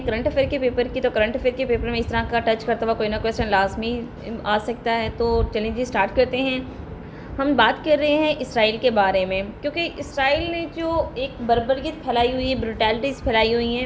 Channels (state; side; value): identical; both; correlation 1.00